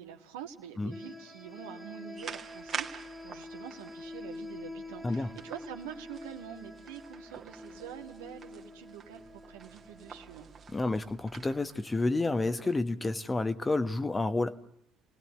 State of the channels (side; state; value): both; normal; correlation 0.89